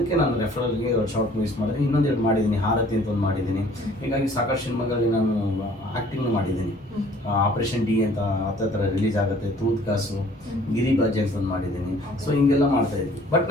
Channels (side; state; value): both; normal; correlation 0.54